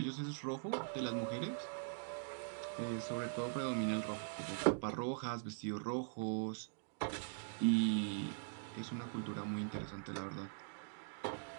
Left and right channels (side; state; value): left; silent; digital silence